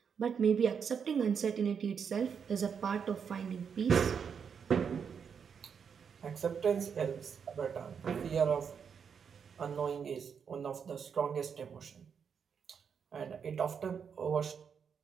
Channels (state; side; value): quieter; left; 6.8 dB